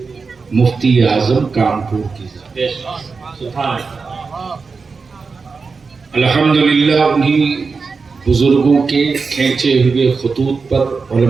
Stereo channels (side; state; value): left; quieter; 4.7 dB